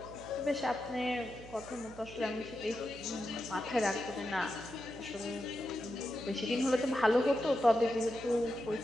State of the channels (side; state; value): right; noise; hum, 17 dB below the sound